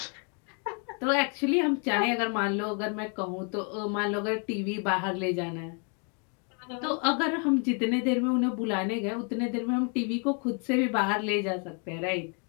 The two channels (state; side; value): quieter; right; 38.8 dB